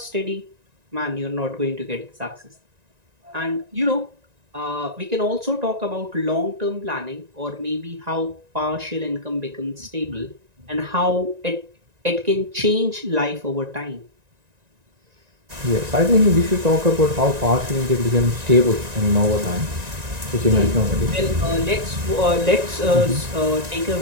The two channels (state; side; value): late; left; 1.9 ms